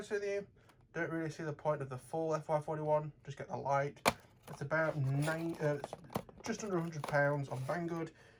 with you, don't really see the point of the full FY41. Just get the Lite. It's about it's just under £100 on Banggood.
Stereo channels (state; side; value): identical; both; correlation 1.00